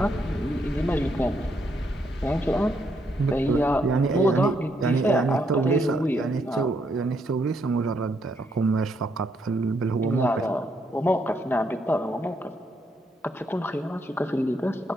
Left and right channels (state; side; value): normal; both; correlation 0.75